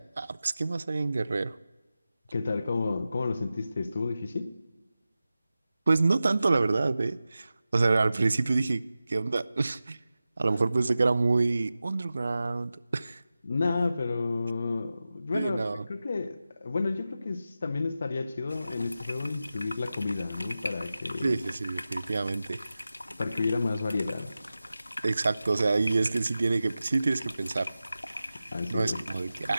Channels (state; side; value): inverted; both; correlation -0.94